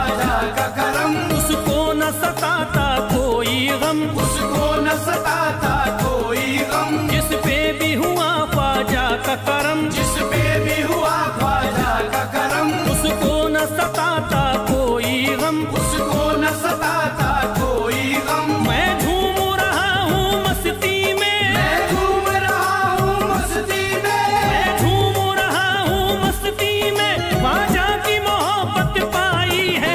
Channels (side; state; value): both; identical; correlation 1.00